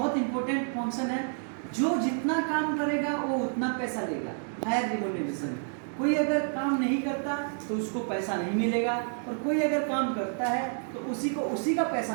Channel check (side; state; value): left; silent; 58 dB below the other